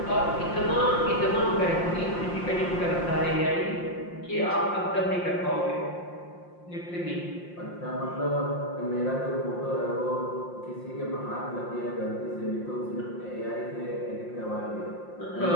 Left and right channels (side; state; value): right; late; 5.7 ms